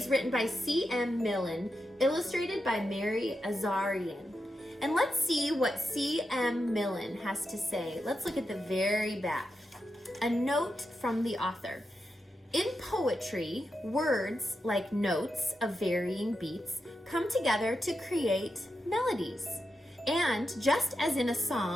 written by C.M. Millen, illustrated by Mary Azarian. And let's see what C.M. Millen has to say. Let's look at the very back. A note from the author. In poetry, words, like notes of varying beats, come together to create melodies. And just as in a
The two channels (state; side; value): normal; both; correlation 0.87